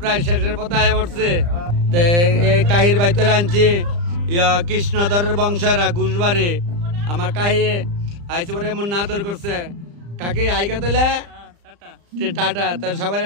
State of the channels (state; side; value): late; left; 35 ms